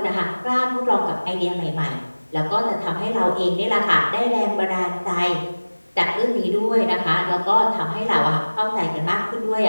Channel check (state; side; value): inverted; both; correlation -1.00